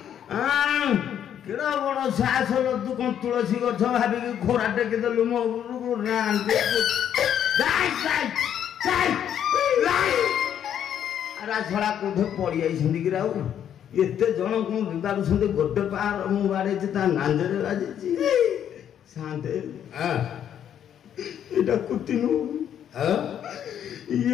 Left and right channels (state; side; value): quieter; right; 9.6 dB